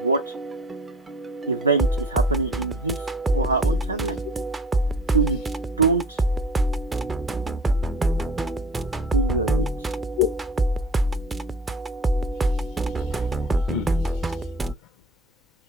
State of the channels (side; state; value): both; normal; correlation 0.43